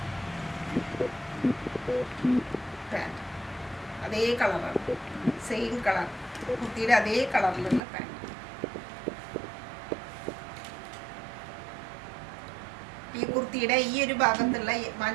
പാൻറ് അതേ കളറാണ്, സെയിം കളർ. കുർത്തിയുടെ അതേ കളറിലുള്ള പാൻറ്. ഈ കുർത്തിയുടെ ഈ ഒരു ഭാഗത്തുള്ള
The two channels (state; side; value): drops out; left; at 7.8 s